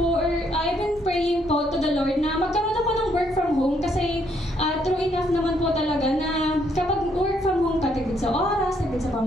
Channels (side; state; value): both; normal; correlation 0.71